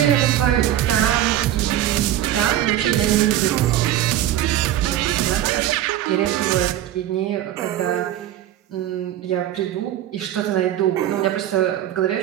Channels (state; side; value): quieter; left; 12.3 dB